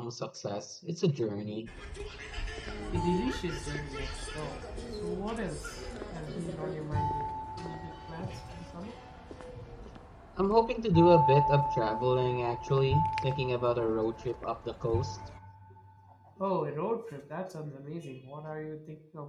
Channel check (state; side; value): identical; both; correlation 1.00